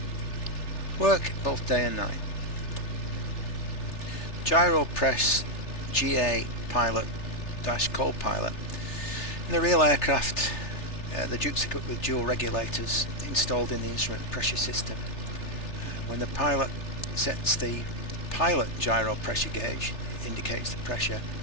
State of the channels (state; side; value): late; right; 3.3 ms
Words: Work both day and night. Gyro press GA pilot - co-pilot. In the real aircraft, the Duke's equipped with dual regulators installed in the instrument pressure system. When the pilot sets the pilot gyro pressure gauge, it indicates the pressure